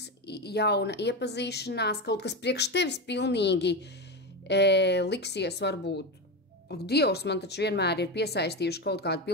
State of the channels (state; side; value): normal; both; correlation 0.17